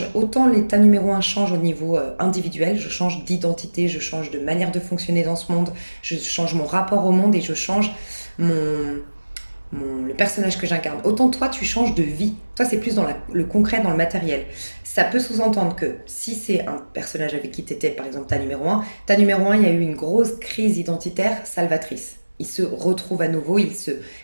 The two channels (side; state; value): both; inverted; correlation -1.00